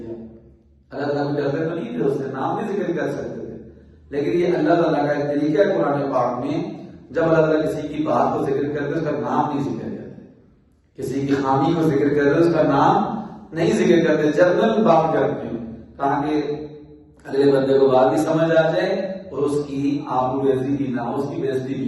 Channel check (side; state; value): both; identical; correlation 1.00